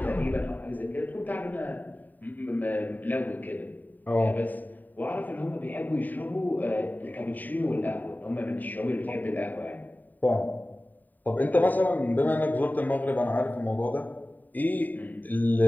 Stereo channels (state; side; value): late; right; 0.086 ms